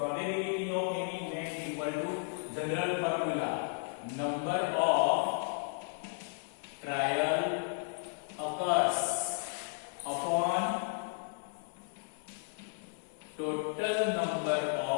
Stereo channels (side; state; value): right; silent; 55 dB below the other